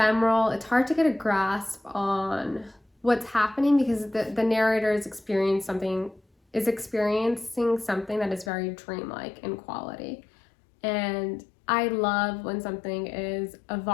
It's hard to get a grasp on what's happening because the narrator is experiencing something that is very dreamlike in quality. And I love when something is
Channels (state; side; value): drops out; right; at 8.5 s